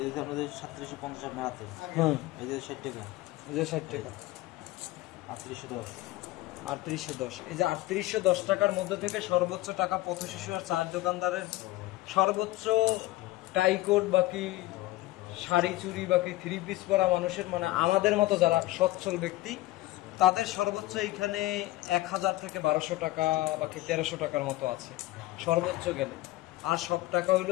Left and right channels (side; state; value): right; quieter; 17.4 dB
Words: এই যে আপনাদের 3750 আপনার হাতে হুম এই যে 60 টাকা এই যে 60 টাকা 3810 3810। এই যে 3810 টাকার মধ্যে থেকে সর্বোচ্চ টাকা পথ শিশু আর চায়ের দোকানদারের, সর্বোচ্চ টাইকোট বাকি শাড়ি চুড়ি বাকি 3 পিস পরা মানুষের, মানে আমাদের মতো যারা সচ্ছল ব্যক্তি, তাদের সর্বোচ্চ এইখানে 1000 থেকে 1200 টাকা বাকি 1300 টাকার মতো আছে সর্বোচ্চ গেলে। আর সব টাকা